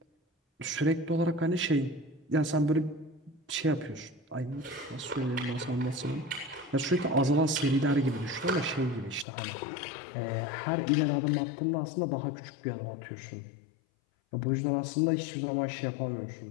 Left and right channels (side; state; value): right; drops out; at 9.2 s